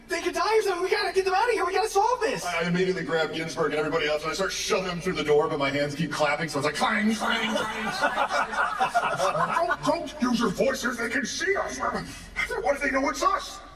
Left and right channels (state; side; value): identical; both; correlation 1.00